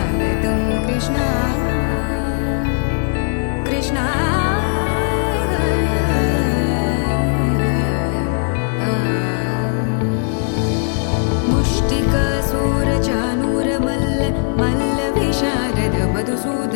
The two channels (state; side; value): silent; right; 67 dB below the other